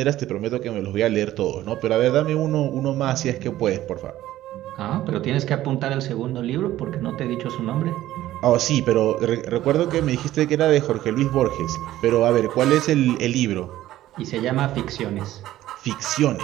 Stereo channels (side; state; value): left; quieter; 14.3 dB